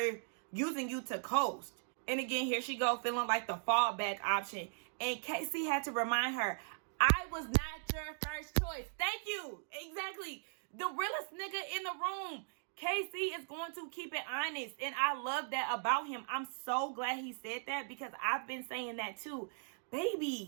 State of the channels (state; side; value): silent; left; digital silence